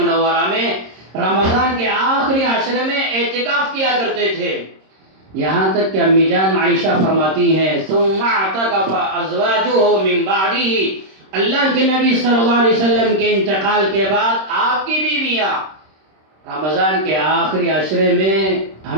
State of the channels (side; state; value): left; late; 26 ms